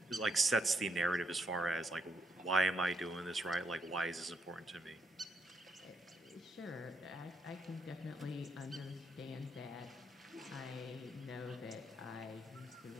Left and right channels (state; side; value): normal; both; correlation 0.77